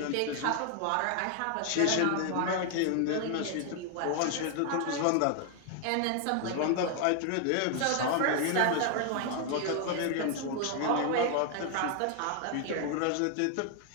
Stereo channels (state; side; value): different; both; correlation 0.00